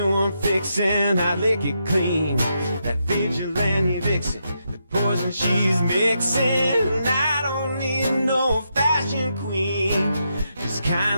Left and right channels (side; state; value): both; inverted; correlation -0.82